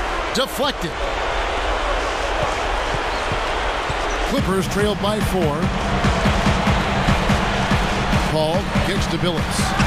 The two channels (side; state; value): both; identical; correlation 1.00